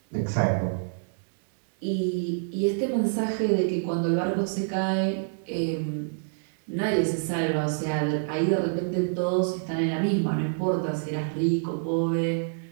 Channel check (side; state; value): left; silent; digital silence